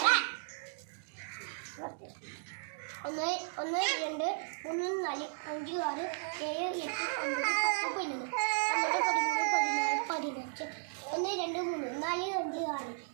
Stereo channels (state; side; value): silent; left; digital silence